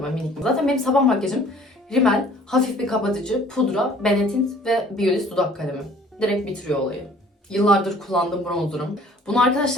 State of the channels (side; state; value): both; normal; correlation 0.53